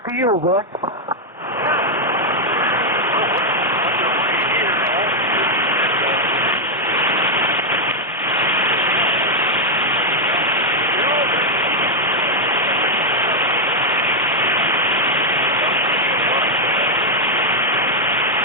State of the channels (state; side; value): normal; both; correlation 0.00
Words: to you, Vic.